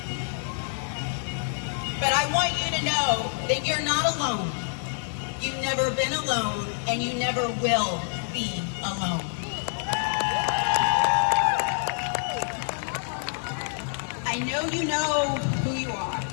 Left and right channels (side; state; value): right; silent; digital silence